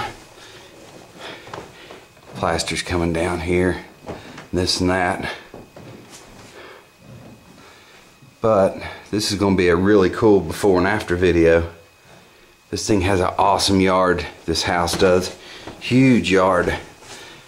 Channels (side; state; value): both; identical; correlation 1.00